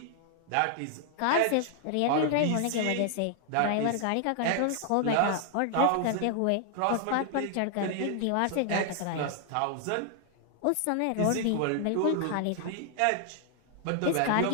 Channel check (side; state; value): both; different; correlation 0.00